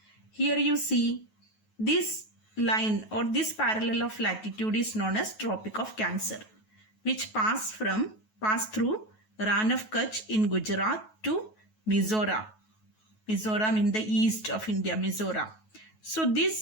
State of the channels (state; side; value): late; right; 9.3 ms